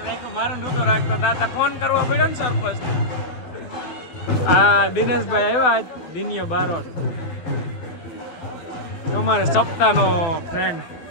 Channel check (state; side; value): late; right; 12 ms